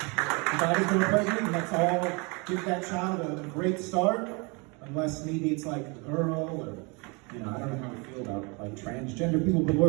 got his girl pregnant, and let's all give that child a great start. Unless maybe it's like a girl, or, I don't know how I feel about like transgender people, but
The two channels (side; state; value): left; quieter; 30.2 dB